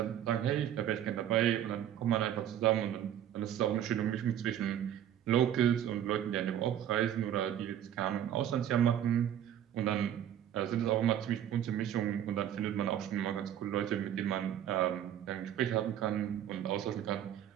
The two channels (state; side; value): quieter; left; 10.6 dB